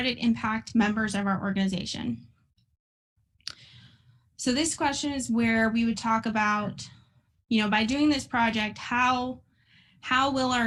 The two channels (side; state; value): both; identical; correlation 1.00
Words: impact members of our organization? So this question is where we would talk about, by doing this project, how will